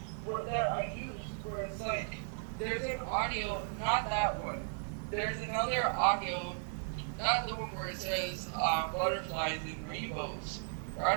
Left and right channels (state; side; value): silent; left; 54 dB below the other